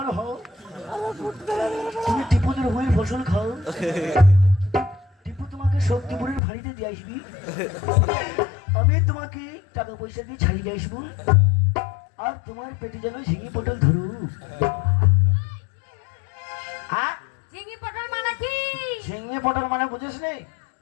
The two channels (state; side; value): drops out; right; at 6.4 s